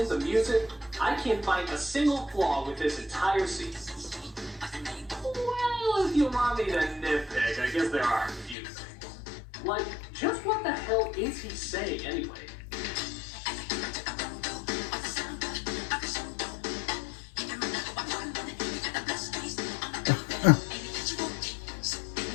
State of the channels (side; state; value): right; drops out; at 8.6 s